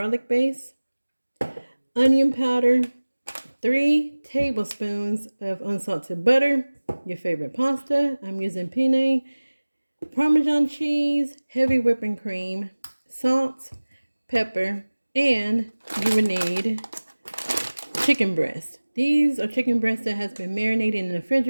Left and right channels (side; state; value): both; inverted; correlation -1.00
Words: base, onion powder, 3 tablespoons of unsalted butter, your favorite pasta. I'm using penne, Parmesan cheese, heavy whipping cream, salt, pepper, and you would need chicken breast. These are chicken breasts that has been marinated in the